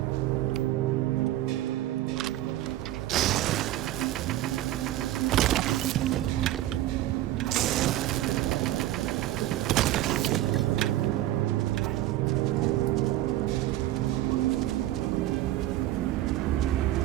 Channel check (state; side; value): quieter; left; 14.6 dB